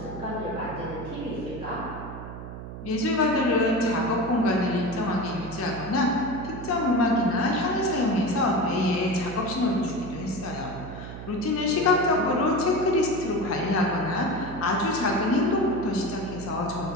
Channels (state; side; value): noise; right; hum, 10 dB below the sound